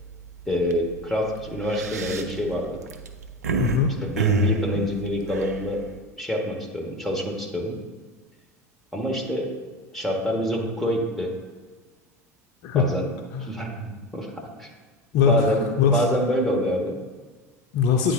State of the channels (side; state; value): both; normal; correlation 0.25